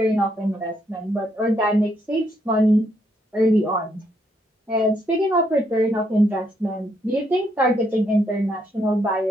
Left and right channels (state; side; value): normal; both; correlation 0.74